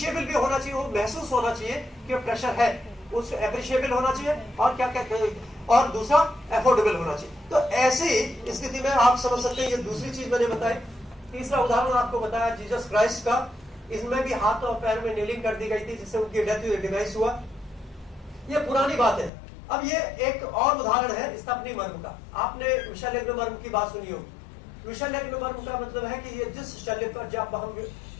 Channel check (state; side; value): drops out; right; at 19.3 s